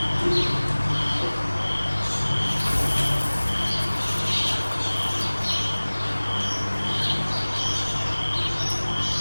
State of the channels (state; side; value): inverted; both; correlation -1.00